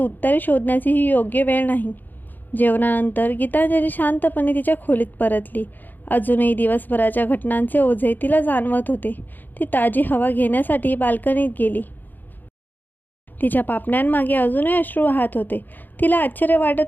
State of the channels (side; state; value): right; late; 0.088 ms